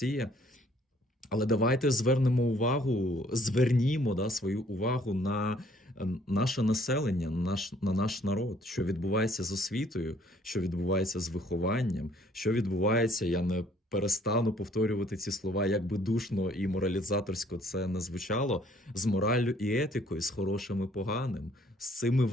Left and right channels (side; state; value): both; normal; correlation 0.61